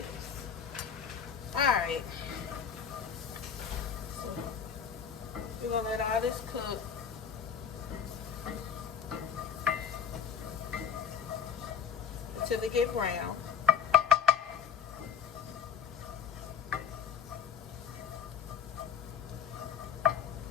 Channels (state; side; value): quieter; right; 7.5 dB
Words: Alright. So, we're going to let all this cook. Until they get brown.